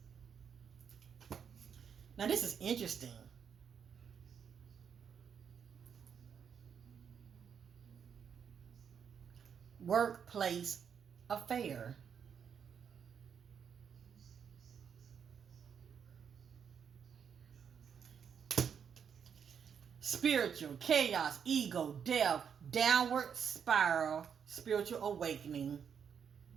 Now this is interesting. Workplace affair. Spiritual chaos, ego, death, downward spiral, spiritual awakening.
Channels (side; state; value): left; quieter; 7.4 dB